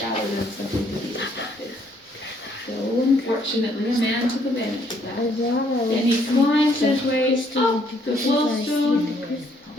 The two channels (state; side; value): normal; both; correlation 0.67